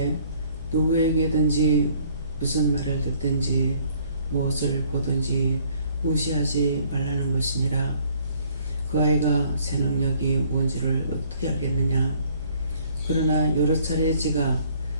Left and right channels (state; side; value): inverted; both; correlation -0.61